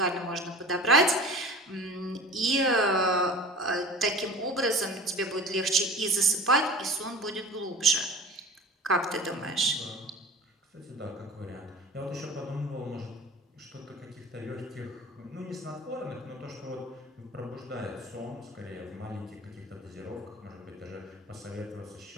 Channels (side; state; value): both; normal; correlation 0.38